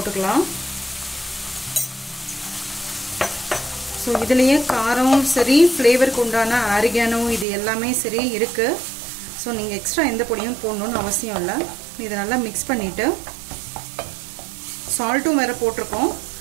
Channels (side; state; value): left; drops out; at 7.5 s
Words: ஸோ இதுலேயே காரம் சரி, ஃப்ளேவருக்கு உண்டான ஆரிகானோ இது எல்லாமே சரி இருக்கு. ஸோ நீங்கள் எக்ஸ்ட்ரா எந்த பொடியும் போடணும்னு அவசியம் இல்லை. இதை நல்லா மிக்ஸ் பண்ணிட்டு சால்ட்டும் வேற போட்டிருக்கோம்,